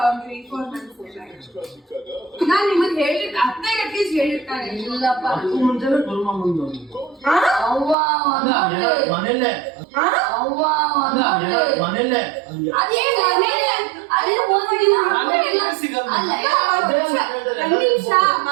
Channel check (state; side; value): drops out; left; at 8.0 s